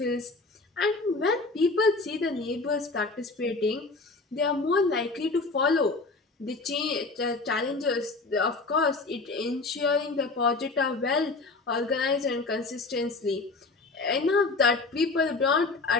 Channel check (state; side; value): quieter; right; 3.7 dB